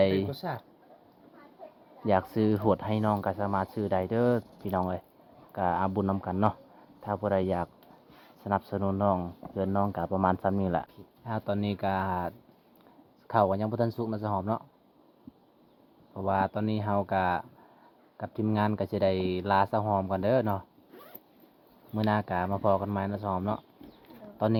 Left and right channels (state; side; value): identical; both; correlation 1.00